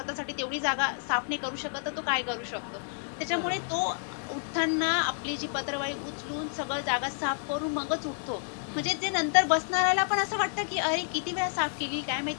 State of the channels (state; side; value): silent; right; 58 dB below the other